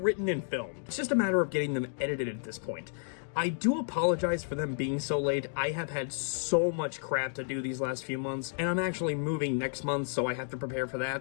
and filmed. It's just a matter of getting them edited at this point. I do apologize for them being so late. I have had so much crap to do these last few months, and I'm actually moving next month, so I have to prepare for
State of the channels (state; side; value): silent; right; digital silence